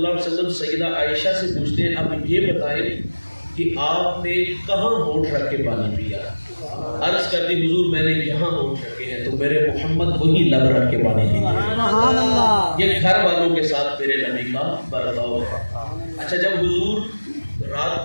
علیہ وسلم سیدہ عائشہ سے پوچھتے ہیں اب یہ بتائیں کہ آپ نے کہاں ہونٹ رکھ کے پانی پیا؟ عرض کرتی حضور میں نے یہاں ہونٹ رکھے ہیں، تو میرے محمد وہی لب رکھ کے پانی پیتے ہیں۔ یہ گھر والوں کے ساتھ میرے نبی کا برتاؤ ہے۔ اچھا، جب حضور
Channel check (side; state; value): both; inverted; correlation -1.00